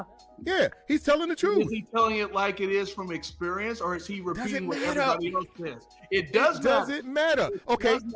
Yeah, he's telling the truth. Is he telling it like it is from experience, or is he repeating what matter. everybody else says? It doesn't matter. Okay.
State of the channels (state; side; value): identical; both; correlation 1.00